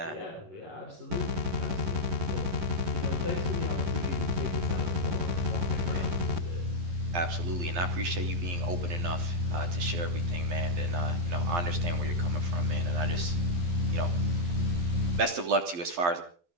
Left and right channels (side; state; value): left; late; 11 ms